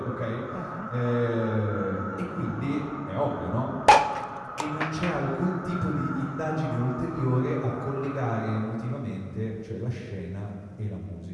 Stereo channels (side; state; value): both; identical; correlation 1.00